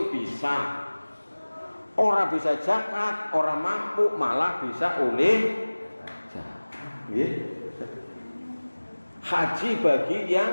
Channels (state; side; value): inverted; both; correlation -1.00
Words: bisa. Ora bisa zakat, ora mampu, malah bisa oleh zakat. Nggih. Haji bagi yang